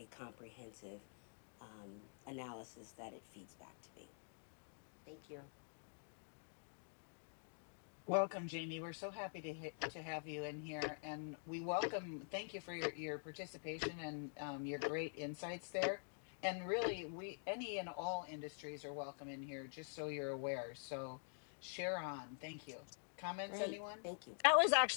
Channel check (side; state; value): right; silent; digital silence